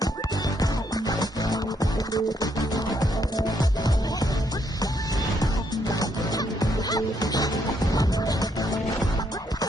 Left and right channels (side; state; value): both; normal; correlation 0.74